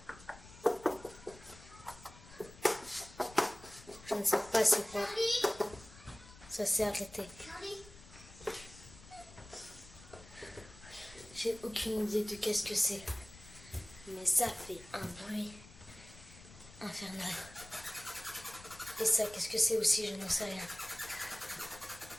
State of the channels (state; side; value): noise; left; rumble, 19 dB below the sound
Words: Je ne sais pas c'est quoi. Ça s'est arrêté. J'ai aucune idée de qu'est-ce que c'est. Mais ça fait un bruit infernal. Et ça, qu'est-ce que c'est aussi? Je n'en sais rien.